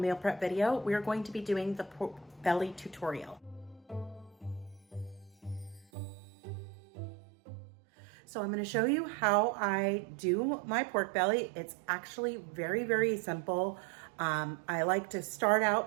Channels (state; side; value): drops out; left; at 5.9 s